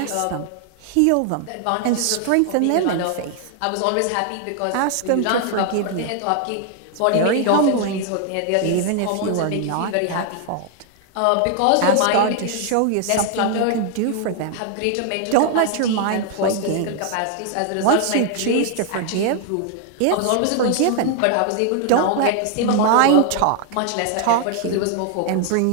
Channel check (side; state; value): both; different; correlation 0.00